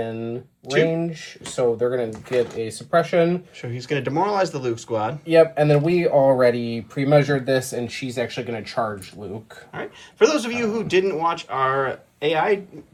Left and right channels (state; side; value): identical; both; correlation 1.00